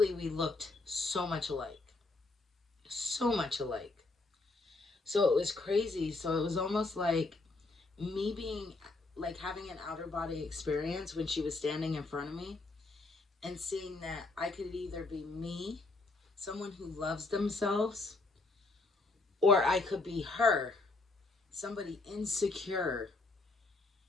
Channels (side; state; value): right; quieter; 3.4 dB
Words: we looked so much alike. So much alike. So it was crazy. So it was almost like me being, like, having an outer body experience when she was standing in front of me, and seeing that I could either be me, someone who loves themselves, or I could be her, somebody insecure,